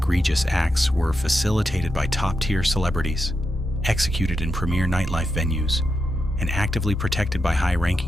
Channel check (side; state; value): both; normal; correlation 0.86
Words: acts were facilitated by top-tier celebrities, executed in premier nightlife venues, and actively protected by